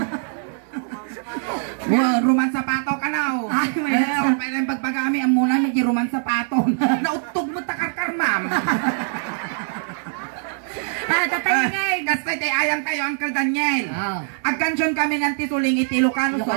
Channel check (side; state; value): left; silent; digital silence